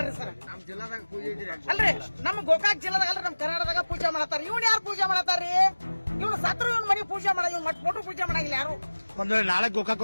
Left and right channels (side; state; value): both; inverted; correlation -1.00